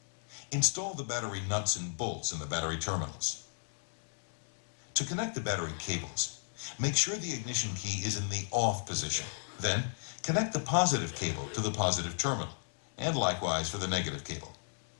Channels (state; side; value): silent; right; digital silence